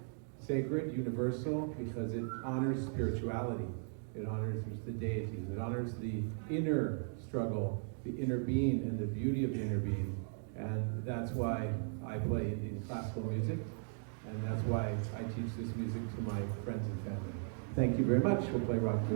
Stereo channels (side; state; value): left; silent; 53 dB below the other